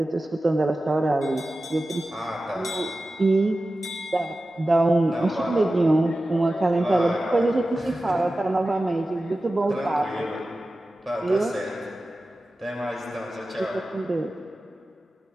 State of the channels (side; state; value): both; normal; correlation 0.94